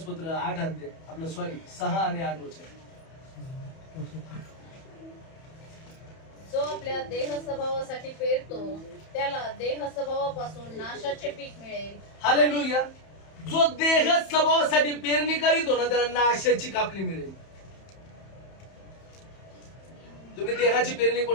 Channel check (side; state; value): right; late; 31 ms